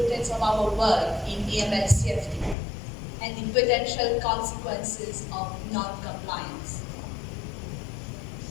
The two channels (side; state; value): right; drops out; at 2.6 s